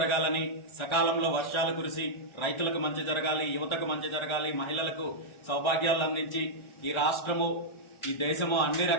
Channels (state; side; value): late; right; 1.3 ms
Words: సకాలంలో వర్షాలు కురిసి రైతులకు మంచి జరగాలి, యువతకు మంచి జరగాలి, మహిళలకు సౌభాగ్యాలు అందించి ఈ రాష్ట్రము ఈ దేశము అన్ని